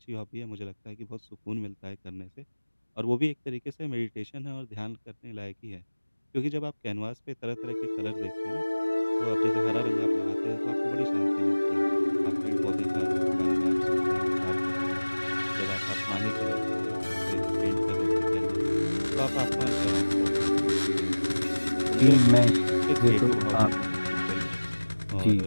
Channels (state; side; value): inverted; both; correlation -1.00